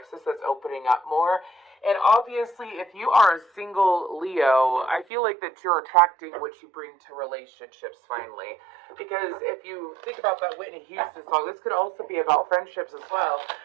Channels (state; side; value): drops out; left; at 5.1 s